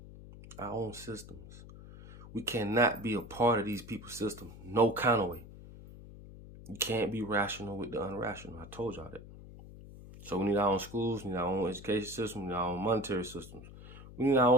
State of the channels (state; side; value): noise; left; hum, 16 dB below the sound